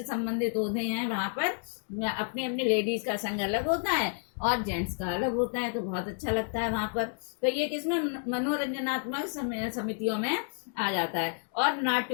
संबंधित होते हैं, वहां पर अपनी अपनी लेडीज का संघ अलग होता है, और जेंट्स का अलग होता है, तो बहुत अच्छा लगता है वहां पर। तो ये किसमें मनोरंजनात्मक समितियों में आ जाता है। और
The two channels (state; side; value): silent; right; 56 dB below the other